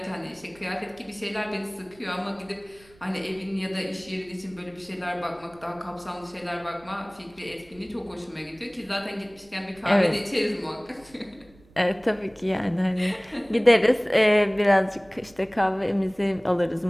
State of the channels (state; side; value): noise; right; rumble, 27 dB below the sound